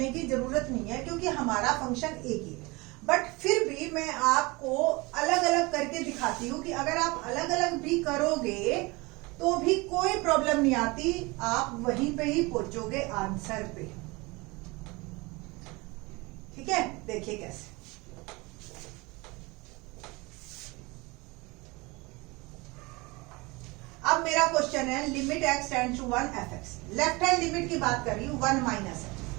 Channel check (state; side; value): quieter; left; 24.7 dB